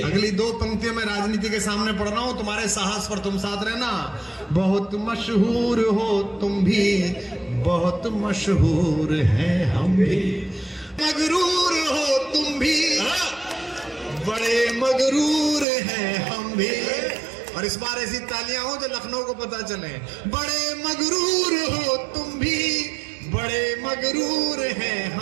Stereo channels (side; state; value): left; drops out; at 15.7 s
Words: अगली 2 पंक्तियों में राजनीति के सामने पढ़ रहा हूं, तुम्हारे साहस पर तुम साथ रहना। बहुत मशहूर हो तुम भी, बहुत मशहूर हैं हम भी। मगरूर हो तुम भी, बड़े मगरूर हैं हम भी। और इस बार ऐसी तालियां हो जो लखनऊ को पता चले। बड़े मगरूर हो तुम भी, बड़े मगरूर हैं